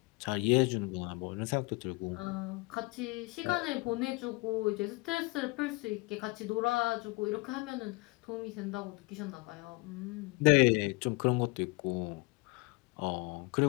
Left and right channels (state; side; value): quieter; right; 25.5 dB